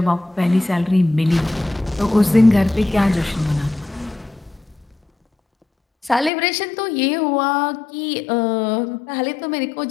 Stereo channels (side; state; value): right; drops out; at 6.3 s